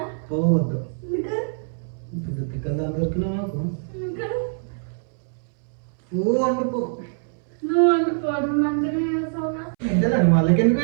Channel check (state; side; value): silent; left; 62 dB below the other